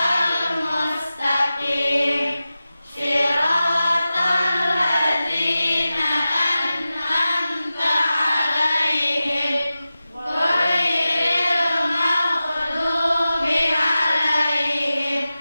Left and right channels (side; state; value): both; inverted; correlation -0.94